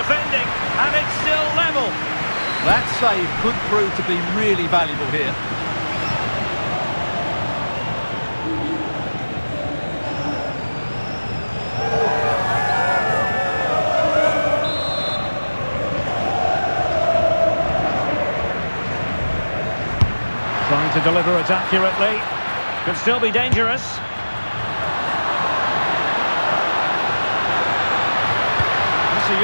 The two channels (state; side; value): inverted; both; correlation -1.00